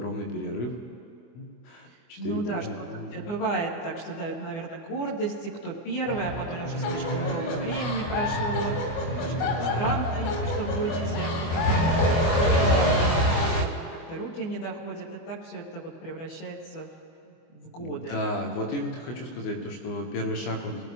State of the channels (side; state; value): right; late; 24 ms